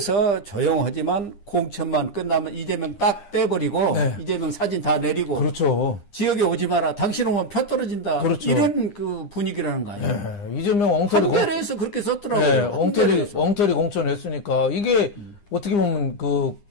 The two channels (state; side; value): late; right; 9.9 ms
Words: 조용하지만 공천만 끝나면 이재명 딱 떼버리고 이재명 사진 다 내리고 그렇죠. 지역에 오지 마라. 당신 오면 표 떨어진다. 그렇죠. 이런 그 분위기라는 거 아니에요. 이재명 엉터리 한겨레에서 그렇게 썼더라고요. 엉터리 공천했으니까 이게 어떻게 보면 그